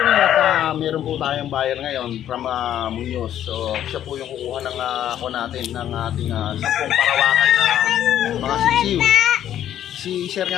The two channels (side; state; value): right; quieter; 11.1 dB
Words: kapinoy at meron po tayong buyer ngayon from Muñoz. So siya po yung kukuha ng ako natin ng ating 10 parawakan na mga sisiw. Si sir